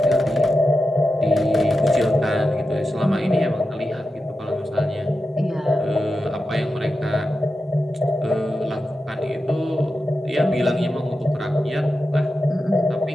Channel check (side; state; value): both; normal; correlation 0.90